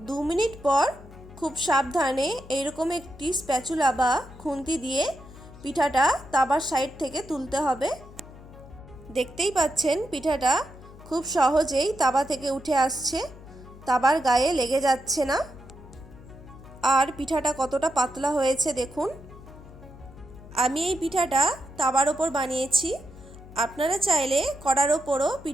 2 মিনিট পর খুব সাবধানে এইরকম একটি স্প্যাচুলা বা খুন্তি দিয়ে পিঠাটা তাওয়ার সাইড থেকে তুলতে হবে। দেখতেই পাচ্ছেন পিঠাটা খুব সহজেই তাওয়া থেকে উঠে আসছে, তাওয়ার গায়ে লেগে যাচ্ছে না। আর পিঠাটা কতটা পাতলা হয়েছে দেখুন। আমি এই পিঠাটা তাওয়ার ওপর বানিয়েছি। আপনারা চাইলে কড়ার ওপরও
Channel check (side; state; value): left; noise; hum, 18 dB below the sound